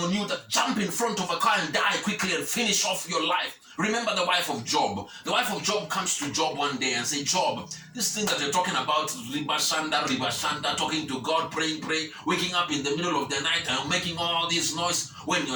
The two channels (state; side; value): identical; both; correlation 1.00